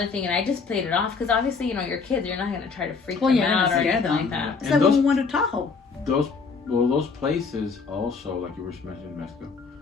thing, and I just played it off because obviously, you know, your kids, you're not gonna try to freak Well, them you're not out or gonna scare anything like them. that. It's And like those- when we went to Tahoe. Those places also, like you were mentioning, Mexico,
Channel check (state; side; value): quieter; right; 4.9 dB